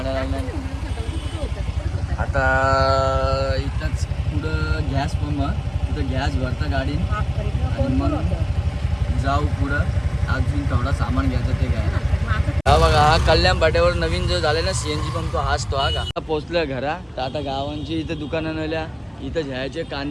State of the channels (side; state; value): both; identical; correlation 1.00